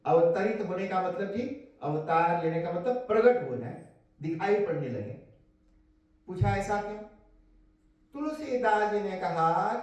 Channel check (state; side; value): identical; both; correlation 1.00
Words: अवतरित होने का मतलब जी, अवतार लेने का मतलब प्रकट हो जाए, दिखाई पड़ने लगे। पूछा ऐसा क्यों? तुलसीदास जी ने कहा